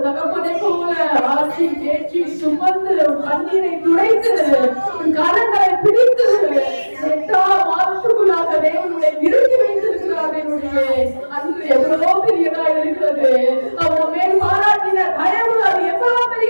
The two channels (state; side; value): inverted; both; correlation -1.00